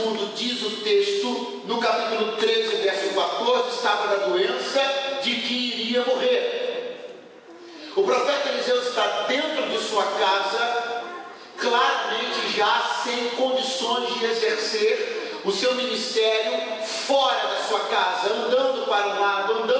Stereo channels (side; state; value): both; identical; correlation 1.00